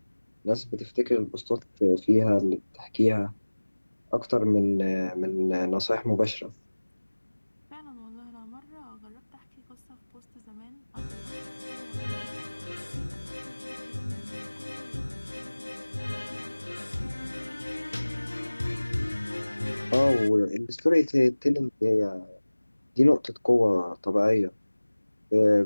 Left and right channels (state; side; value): inverted; both; correlation -1.00